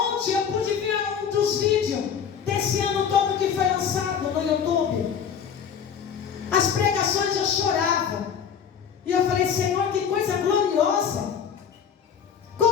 eu pude ver um dos vídeos desse ano todo que foi lançado no YouTube. As pregações eu chorava. E eu falei, Senhor, que coisa gloriosa.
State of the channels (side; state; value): right; quieter; 7.6 dB